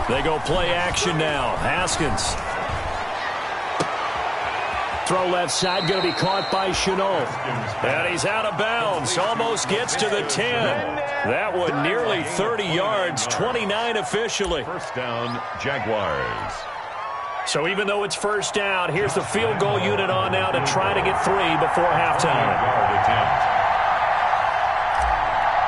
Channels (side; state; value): both; identical; correlation 1.00